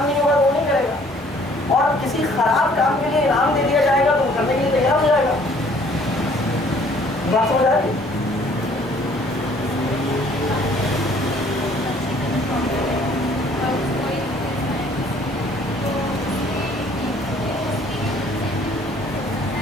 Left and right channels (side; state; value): both; normal; correlation 0.58